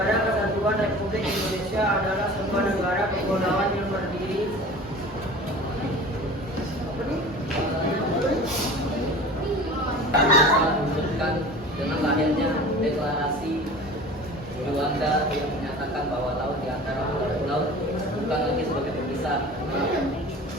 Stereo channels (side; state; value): both; normal; correlation 0.39